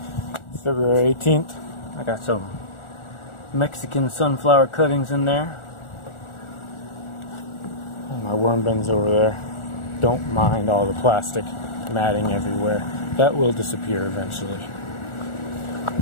February 18th. I got some Mexican sunflower cuttings in there. And my worm bins over there. Don't mind all the plastic matting everywhere. That will disappear eventually.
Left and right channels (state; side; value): late; right; 1.4 ms